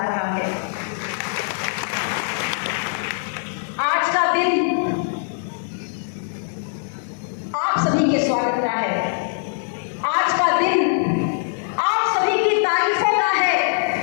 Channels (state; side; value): silent; right; 64 dB below the other